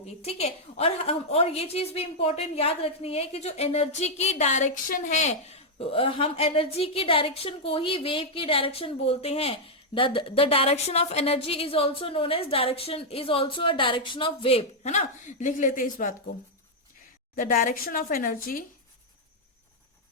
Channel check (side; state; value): both; normal; correlation -0.02